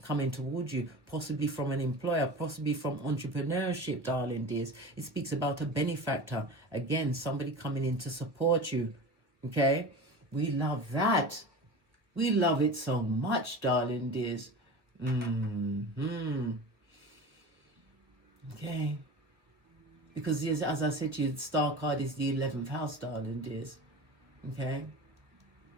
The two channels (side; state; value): left; late; 1.3 ms